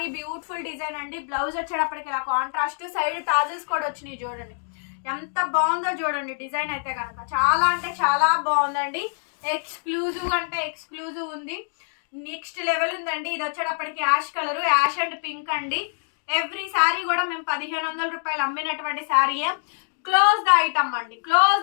బ్యూటిఫుల్ డిజైన్ అండి. బ్లౌజ్ వచ్చేటప్పటికి ఇలా కాంట్రాస్ట్, సైడ్ టాజిల్స్ కూడా వచ్చినాయి చూడండి. ఎంత బాగుందో చూడండి డిజైన్ అయితే కనుక. చాలా అంటే చాలా బాగుందండి. ఎక్స్క్లూజివ్ అంటే ఎక్స్క్లూజివ్ ఉంది. నెక్స్ట్ లెవెల్ ఉందండి. ఇది వచ్చేటప్పటికి ash colour, ash and pink అండి. ఎవ్రీ శారీ కూడా మేము 1500 రూపాయలు అమ్మినటువంటి శారీయే. క్లోజ్ ద ఐటమ్ అండి, క్లోజ్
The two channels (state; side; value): silent; right; digital silence